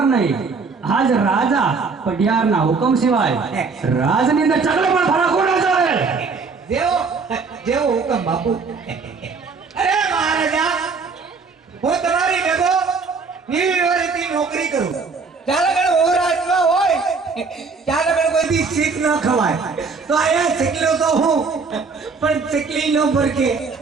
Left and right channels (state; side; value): quieter; left; 4.7 dB